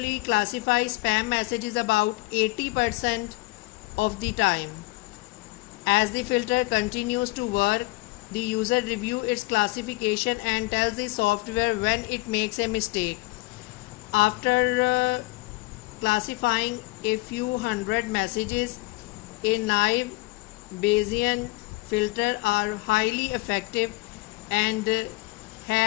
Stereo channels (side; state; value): right; quieter; 22.4 dB